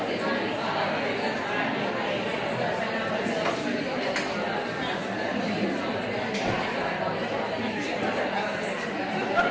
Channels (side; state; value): both; identical; correlation 1.00